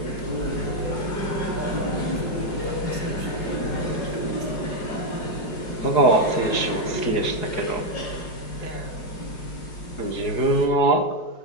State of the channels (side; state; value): right; late; 4.8 ms